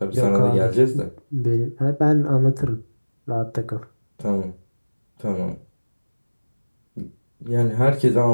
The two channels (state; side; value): inverted; both; correlation -1.00